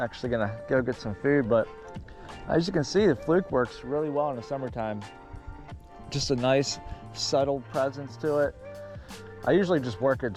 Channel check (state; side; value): identical; both; correlation 1.00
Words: actually gonna go get some food, but as you can see, the Fluke works really well in the summertime. Just a nice subtle presence to it. I usually just work it